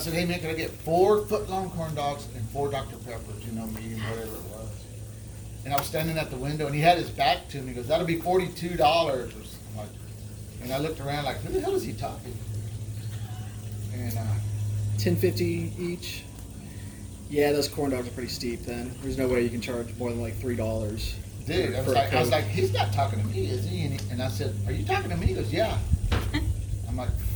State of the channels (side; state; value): both; identical; correlation 1.00